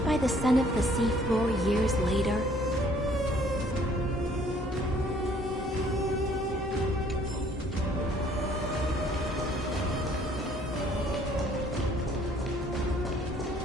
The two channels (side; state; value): both; normal; correlation 0.60